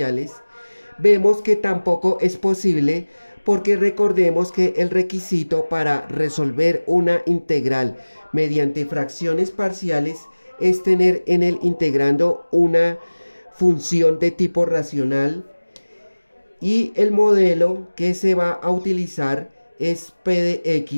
vemos que tampoco es posible, porque recordemos que el requisito para resolver una integral mediante fracciones parciales es tener en el integrando una función de tipo racional, y el modelo que se va a utilizar es P de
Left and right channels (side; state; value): both; inverted; correlation -1.00